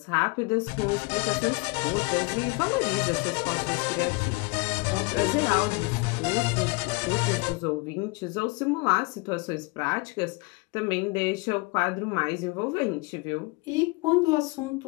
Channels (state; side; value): quieter; right; 26.2 dB